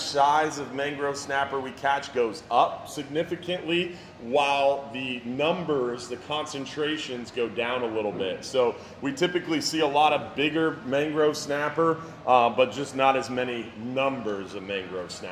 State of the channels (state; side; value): identical; both; correlation 1.00